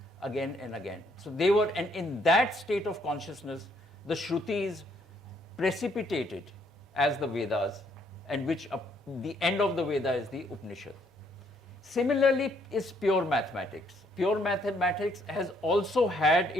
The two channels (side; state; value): both; normal; correlation 0.69